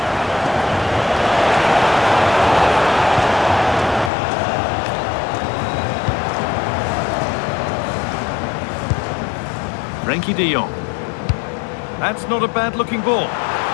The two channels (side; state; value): right; drops out; at 4.1 s